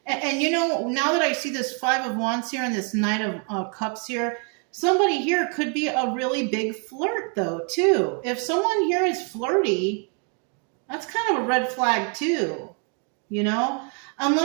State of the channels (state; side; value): quieter; left; 39.7 dB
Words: and you know, now that I see this 5 of Wands here and this Knight of Cups here, somebody here could be a really big flirt though, too. If someone here is flirty, that's kind of a red flag too. You know,